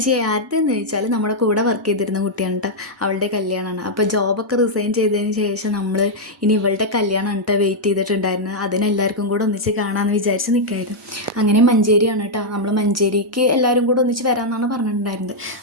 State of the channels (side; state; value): both; normal; correlation -0.04